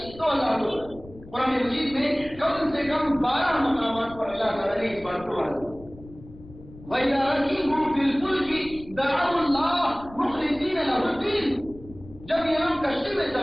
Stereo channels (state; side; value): noise; left; rumble, 19 dB below the sound